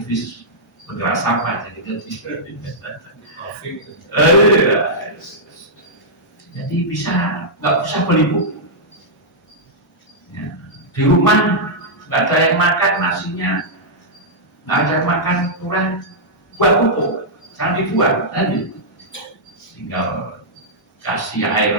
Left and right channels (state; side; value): normal; both; correlation -0.10